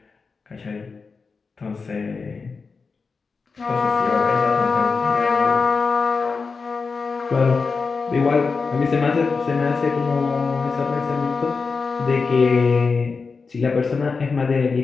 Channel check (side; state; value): right; quieter; 4.7 dB